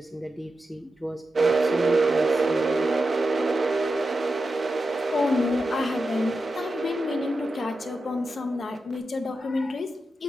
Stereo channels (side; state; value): both; normal; correlation 0.90